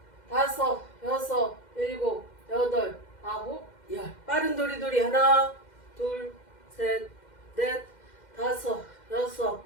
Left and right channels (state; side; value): late; right; 2.1 ms